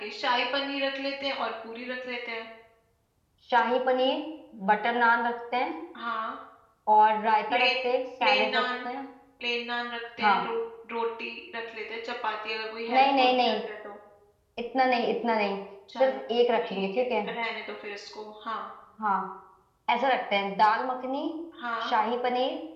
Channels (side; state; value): both; identical; correlation 1.00